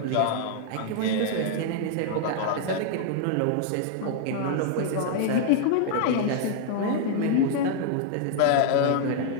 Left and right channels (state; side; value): different; both; correlation 0.00